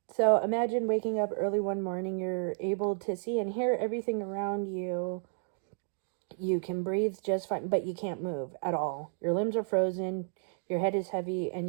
So imagine waking up early one morning. You're able to see and hear everything around you. You can breathe just fine, but you can't move at all. Your limbs are frozen. Your head is heavy,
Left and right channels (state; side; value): silent; left; digital silence